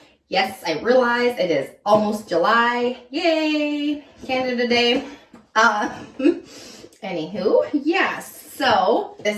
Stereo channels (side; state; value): both; identical; correlation 1.00